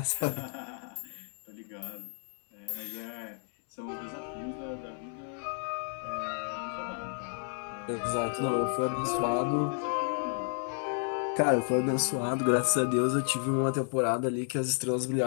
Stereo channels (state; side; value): silent; right; 56 dB below the other